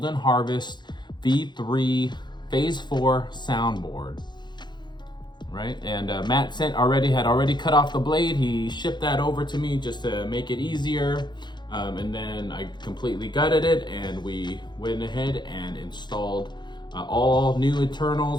Harvest V3 Phase 4 soundboard. Right, and Matt had already cut off the blade. He shipped that over to me just to make it easier, and then I completely gutted it, and we went ahead and installed all new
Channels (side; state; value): right; late; 0.21 ms